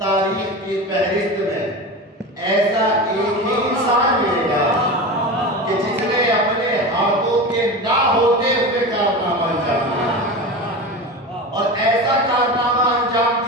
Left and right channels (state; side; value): normal; both; correlation 0.27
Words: तारीख की फहरिस्त में ऐसा एक ही इंसान मिलेगा कि जिसने अपने हाथों के ना होते हुए कारनामा अंजाम दिया, और ऐसा कारनामा अंजाम